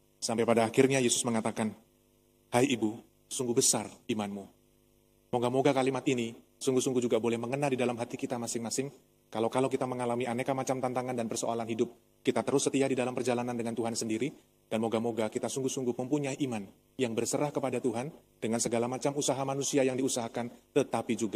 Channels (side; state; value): both; identical; correlation 1.00